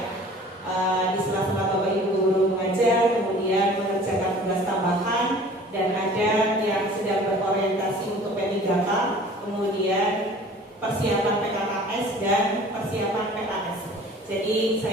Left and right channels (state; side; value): normal; both; correlation 0.47